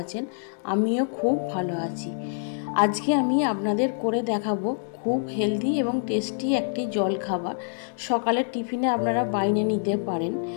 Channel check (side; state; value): right; silent; digital silence